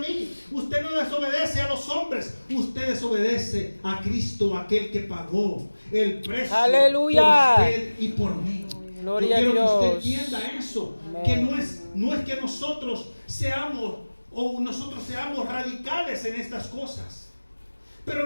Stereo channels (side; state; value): both; inverted; correlation -1.00